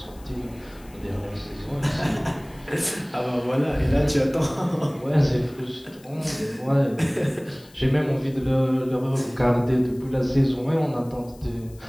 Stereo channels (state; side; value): noise; left; hiss, 26 dB below the sound